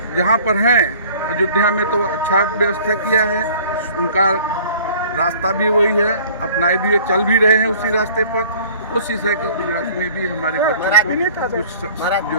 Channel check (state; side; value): inverted; both; correlation -0.50